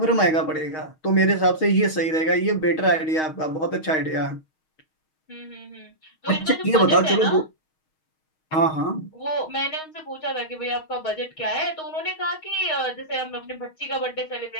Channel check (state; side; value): late; right; 6.4 ms